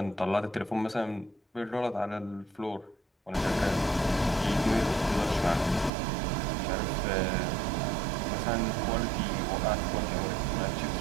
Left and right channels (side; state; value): left; drops out; at 5.9 s